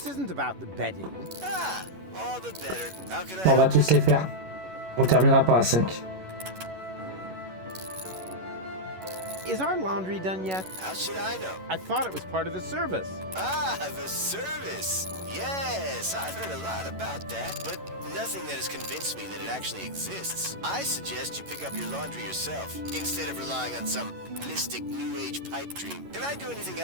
isn't about the bedding. Ah, all the better. How can I On va help you? tous les faire. On terminera par la 5. Is our laundry done yet? How should I know? I thought it was part of the service. Ah, the service. Yes, I've heard a lot about that, but nothing that has convinced me that it actually exists. I suggest you pick up your laundry yourself, instead of relying on some mystic New Age pipe dream. Can I do anything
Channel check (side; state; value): left; late; 11 ms